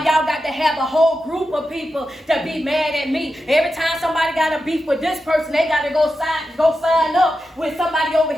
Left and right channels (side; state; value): both; normal; correlation 0.90